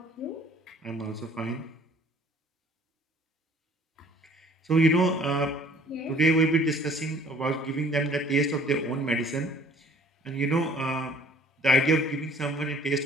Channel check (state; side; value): normal; both; correlation 0.54